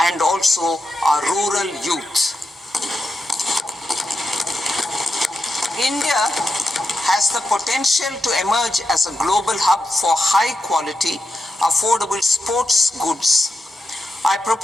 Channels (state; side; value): normal; both; correlation 0.88